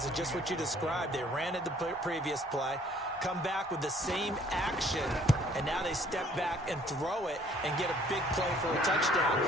of just what you described. They ran it the previous play, come back with the same action, and now they step back and throw it and get a big play for a touchdown.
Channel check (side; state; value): both; normal; correlation 0.59